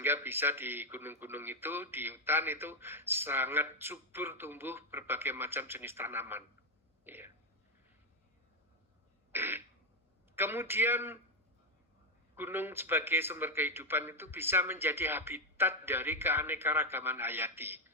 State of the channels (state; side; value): normal; both; correlation 0.05